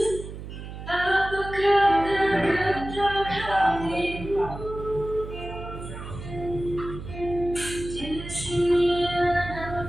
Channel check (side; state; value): right; noise; hum, 10 dB below the sound